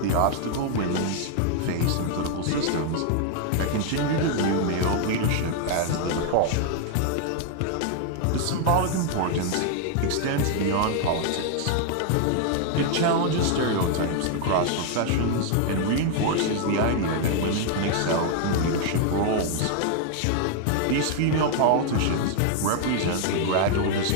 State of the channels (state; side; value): different; both; correlation 0.00